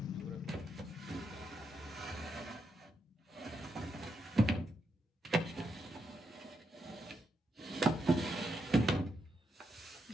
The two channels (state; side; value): normal; both; correlation 0.82